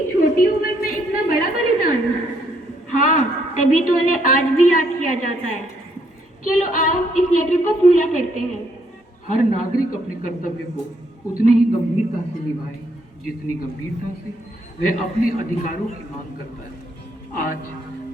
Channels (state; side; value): normal; both; correlation 0.71